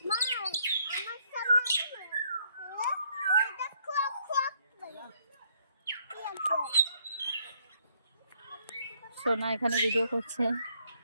সোনা এখানে ভিডিও করছে।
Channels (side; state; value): both; inverted; correlation -0.68